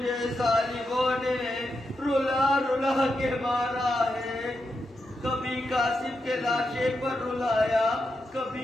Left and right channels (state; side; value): normal; both; correlation 0.86